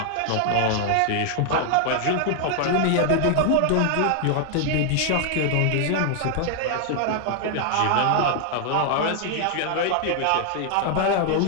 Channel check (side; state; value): both; different; correlation 0.00